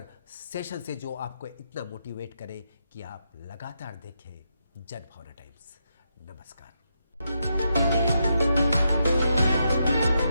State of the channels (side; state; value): both; inverted; correlation -0.82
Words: सेशन से जो आपको इतना मोटिवेट करे कि आप लगातार देखें जनभावना टाइम्स। नमस्कार।